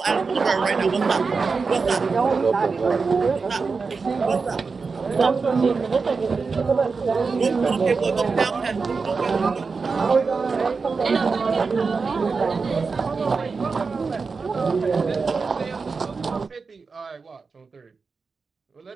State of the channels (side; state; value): left; quieter; 4.7 dB